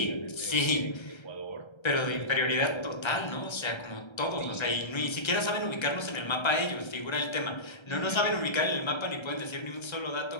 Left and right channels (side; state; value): right; late; 1.3 ms